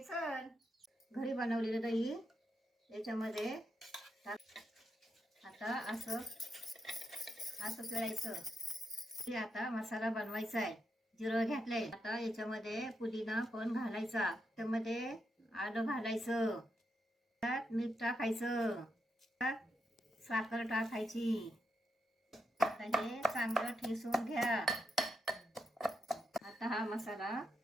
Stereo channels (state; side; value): normal; both; correlation 0.83